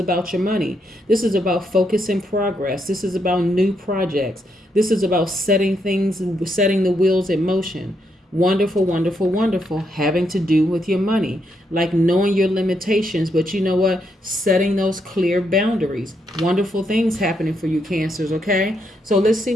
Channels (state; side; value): normal; both; correlation 0.78